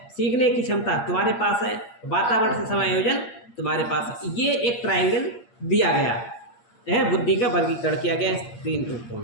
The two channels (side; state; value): right; late; 8.6 ms